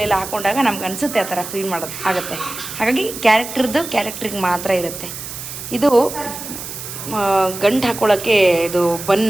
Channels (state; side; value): noise; right; hiss, 9 dB below the sound